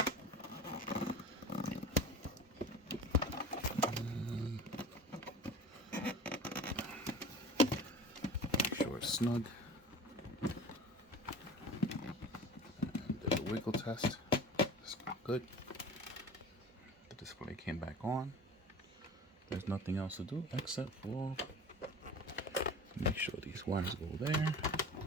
Make sure sure it's snug. And did a wiggle test. It's good. The display came back on. There's nothing else to do except for make sure these wires go there.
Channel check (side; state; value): both; normal; correlation 0.38